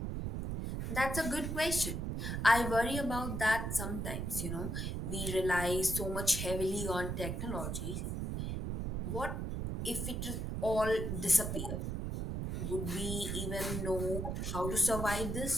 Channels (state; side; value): noise; right; rumble, 3 dB below the sound